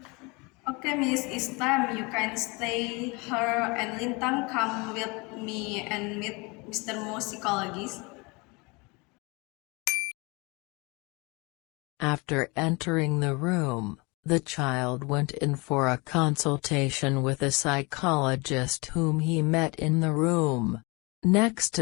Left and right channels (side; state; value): right; quieter; 27.5 dB